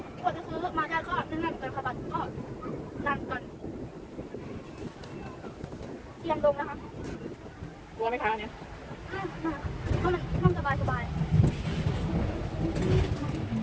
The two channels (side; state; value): both; identical; correlation 1.00